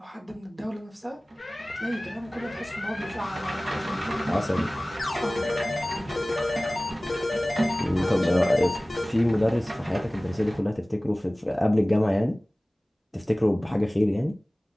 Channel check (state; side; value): normal; both; correlation 0.98